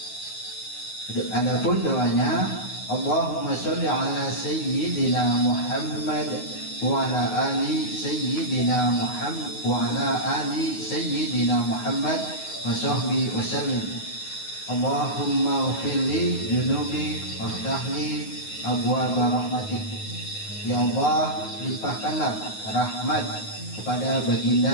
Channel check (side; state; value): right; late; 9.5 ms